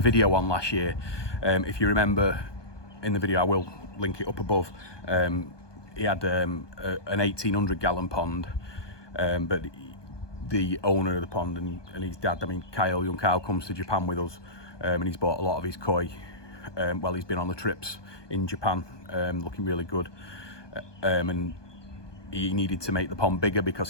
video on last year. If you remember in the video, I will link it up above. He had an 1800 gallon pond, but the owner of the pond and his dad, I mean young Kyle comes to Japan with us, and he's bought a lot of his koi while he's been on the trips in Japan, looking really good. And he needed to make the pond bigger because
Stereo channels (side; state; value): right; late; 1.2 ms